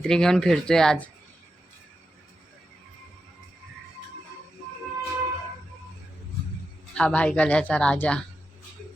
घेऊन फिरतोय आज. हा भाईकल्याचा राजा.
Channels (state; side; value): normal; both; correlation 0.89